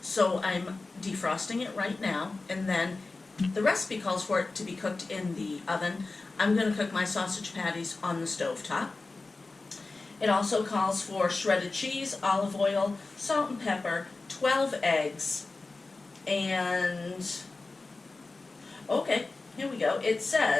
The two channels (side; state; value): right; quieter; 3.5 dB